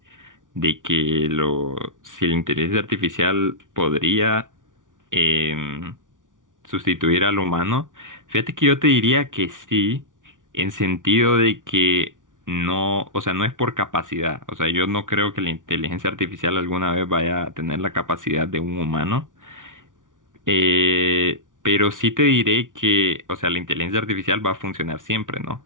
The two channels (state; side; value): late; left; 0.88 ms